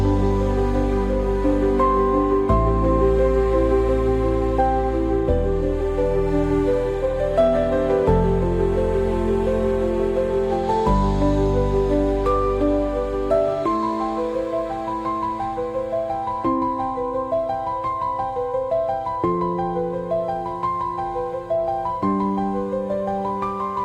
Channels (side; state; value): both; identical; correlation 1.00